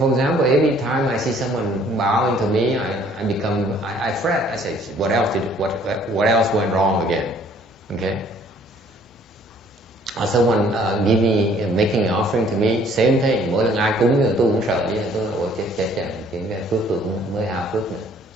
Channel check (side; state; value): both; normal; correlation 0.59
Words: example, every time I see someone bowing to me, I fret. I say, what else went wrong again? Okay. Or someone making an offering to me, same thing. Mỗi lần ai cúng thì tôi cũng sợ vậy. Tôi ôi chết, cái phước tôi cũng mới hao phước nữa.